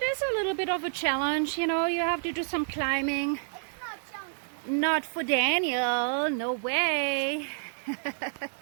is a little bit of a challenge, you know, you have to do some climbing. It's not chunky. Not for Daniel, no way.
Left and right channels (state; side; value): silent; left; digital silence